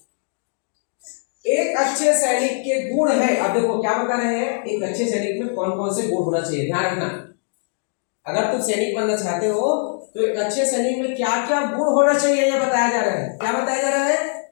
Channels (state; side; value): silent; right; 62 dB below the other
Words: एक अच्छे सैनिक के गुण है। अब देखो क्या बता रहे हैं, एक अच्छे सैनिक में कौन कौन से गुण होना चाहिए, ध्यान रखना। अगर तुम सैनिक बनना चाहते हो तो एक अच्छे सैनिक में क्या क्या गुण होना चाहिए यह बताया जा रहा है। क्या बताया जा रहा है?